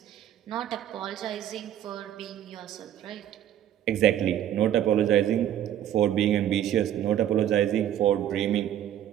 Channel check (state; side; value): quieter; left; 11.1 dB